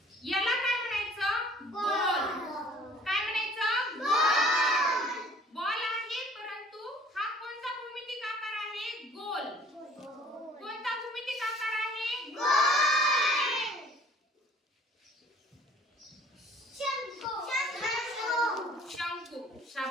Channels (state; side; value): normal; both; correlation 0.53